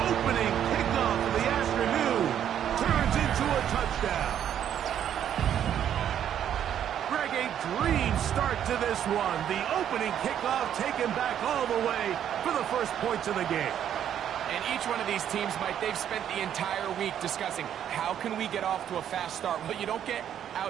opening kickoff of the afternoon turns into a touchdown. A dream start to this one. The opening kickoff taken back all the way for the first points of the game. And each one of these teams, Mike, they've spent the entire week discussing how can we get off to a fast start. Well, you don't get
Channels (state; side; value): quieter; left; 9.8 dB